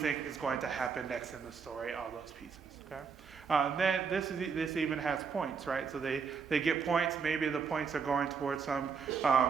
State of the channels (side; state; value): left; quieter; 5.8 dB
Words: is going to happen next in the story? All those pieces, okay? Then this even has points, right? So they get points. Maybe the points are going towards some